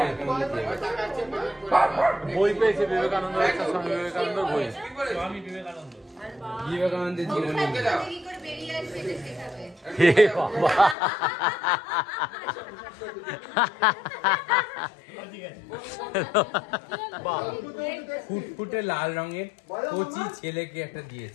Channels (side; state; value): right; drops out; at 11.0 s